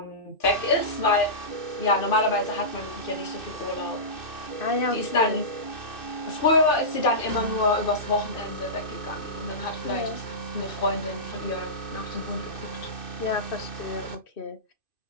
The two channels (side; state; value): right; late; 2.6 ms